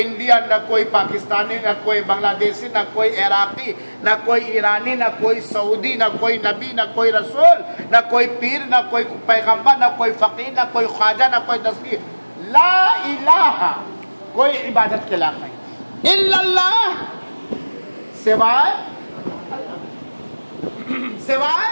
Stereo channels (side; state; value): both; inverted; correlation -1.00